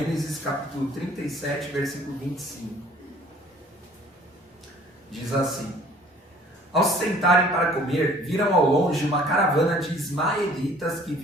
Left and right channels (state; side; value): normal; both; correlation 0.53